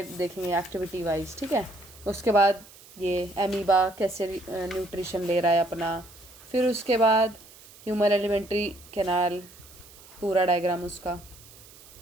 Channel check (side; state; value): right; noise; hiss, 22 dB below the sound